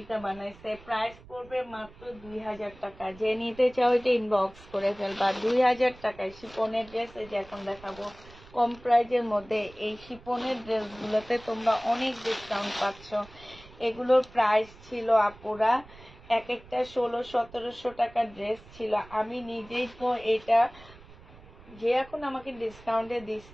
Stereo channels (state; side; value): noise; right; rumble, 21 dB below the sound